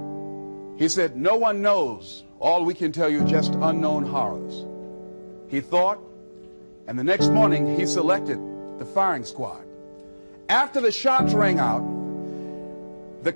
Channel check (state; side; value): inverted; both; correlation -1.00